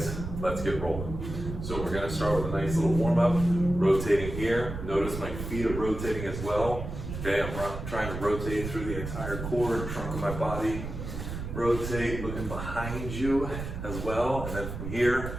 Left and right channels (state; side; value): noise; right; rumble, 7 dB below the sound